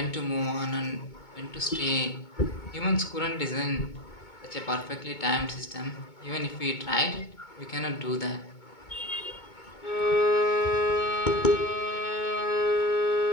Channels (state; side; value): late; right; 2.2 ms